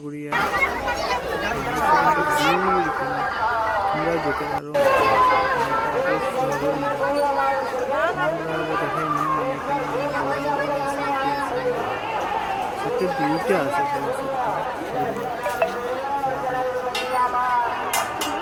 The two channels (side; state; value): both; identical; correlation 1.00